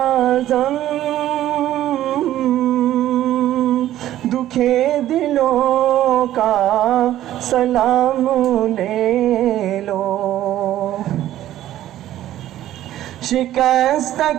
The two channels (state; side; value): quieter; left; 13.1 dB